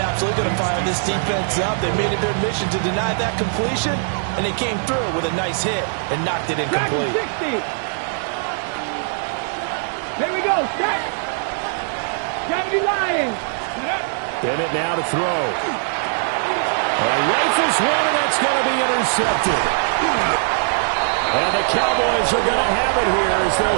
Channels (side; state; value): left; silent; 62 dB below the other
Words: absolutely going to fire this defense up. They made it their mission to deny that completion, and they came through with a nice hit and knocked it incomplete. 60. Here we go. Set. 70 Lions. Bennett now to throw. Rifles one, and that's going to be intercepted. And the Cowboys are going to have it here as they'll